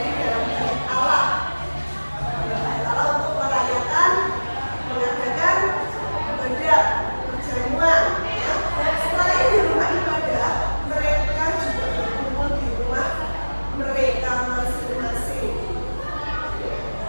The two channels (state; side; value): inverted; both; correlation -1.00